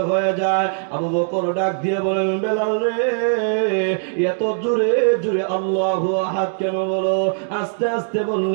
হয়ে যায়। আবু বকর ডাক দিয়ে বলেন, বেলাল রে, এত জোরে জোরে আল্লাহু আহাদ কেন বলো? আস্তে আস্তে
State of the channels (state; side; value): silent; left; digital silence